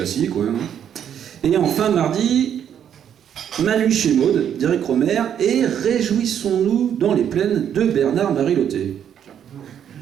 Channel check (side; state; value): left; quieter; 9.1 dB